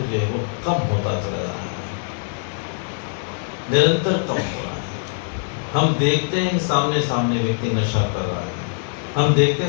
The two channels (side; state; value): right; silent; 62 dB below the other